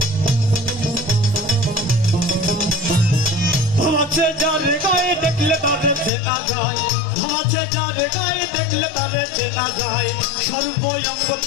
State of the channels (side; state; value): right; drops out; at 6.1 s